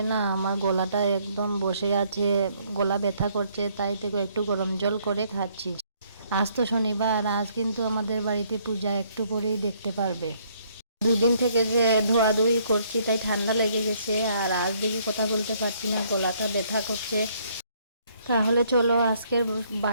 না আমার গলাটা একদম বসে আছে, গলা ব্যথা করছে, তাই থেকে একটু গরম জল করে খাচ্ছি। আজ তো শনিবার, আজ কিন্তু আমাদের বাড়িতে পূজা, একটু পরেই দেখতে পারবে। দুদিন থেকে যে ধোয়াধুয়ি করছি তাই ঠান্ডা লেগে গেছে, আর আজ দেখি কথা বলতে পারছি না, গলাটা ব্যথা করছে। তাহলে চলো আজকের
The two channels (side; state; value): both; inverted; correlation -0.66